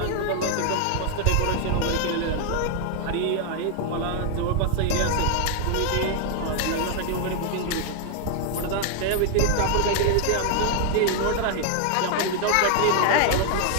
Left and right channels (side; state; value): both; different; correlation 0.00